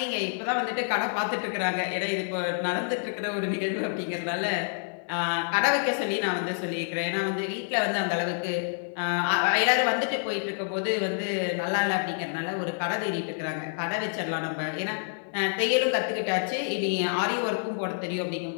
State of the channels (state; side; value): silent; right; 59 dB below the other